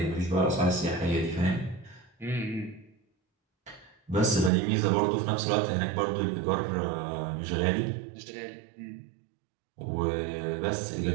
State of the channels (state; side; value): drops out; left; at 4.5 s